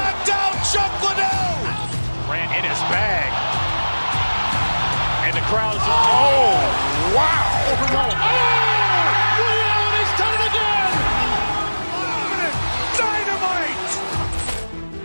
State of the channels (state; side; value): inverted; both; correlation -1.00